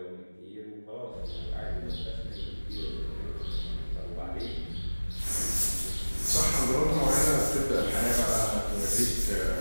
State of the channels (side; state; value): both; inverted; correlation -1.00